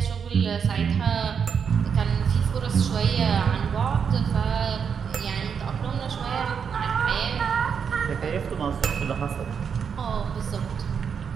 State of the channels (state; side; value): quieter; left; 6.8 dB